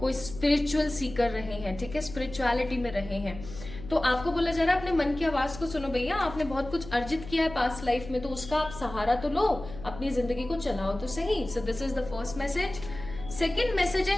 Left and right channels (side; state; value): left; noise; hum, 13 dB below the sound